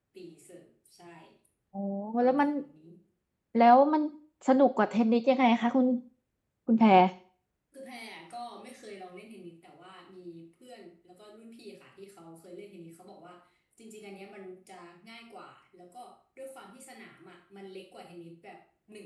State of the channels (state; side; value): identical; both; correlation 1.00